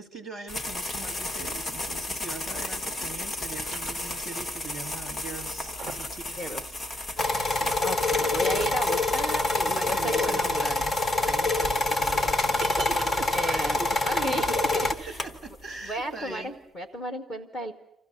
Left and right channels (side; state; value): both; normal; correlation 0.77